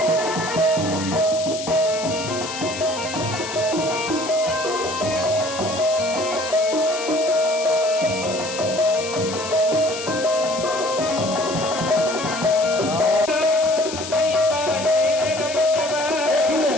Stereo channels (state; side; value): noise; left; hiss, 9 dB below the sound